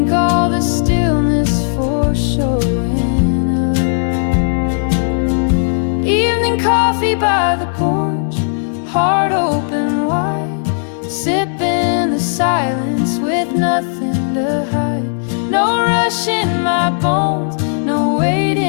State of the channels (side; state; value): right; silent; digital silence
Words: all the stillness for showing up. Evening coffee by the porch, heart open wide, sipping the silence with nothing to hide. No rush in my bones, no weight